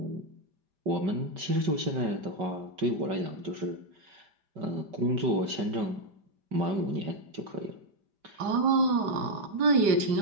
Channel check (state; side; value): late; left; 5.0 ms